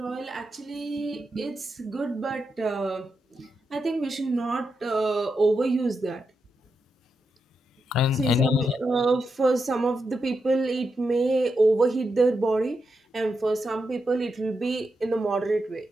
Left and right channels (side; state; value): both; normal; correlation 0.86